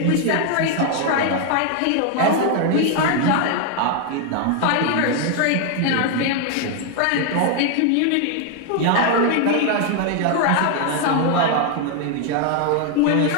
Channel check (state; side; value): different; both; correlation 0.00